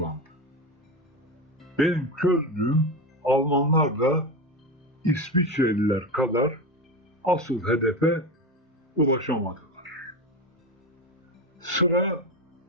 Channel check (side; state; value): both; normal; correlation 0.20